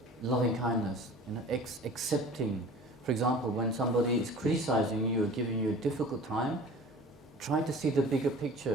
loving kindness, you know, accepting. For example, when somebody is criticizing you or giving you a difficult time, try to see the bigger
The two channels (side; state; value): both; normal; correlation 0.43